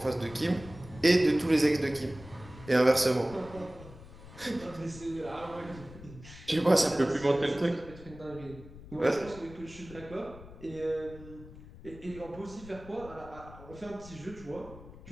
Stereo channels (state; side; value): noise; left; rumble, 17 dB below the sound